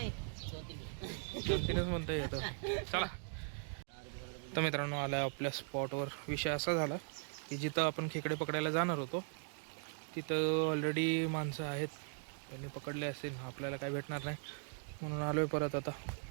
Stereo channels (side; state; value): left; silent; 52 dB below the other